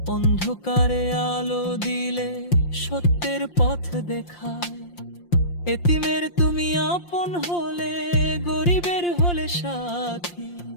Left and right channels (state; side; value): late; right; 5.7 ms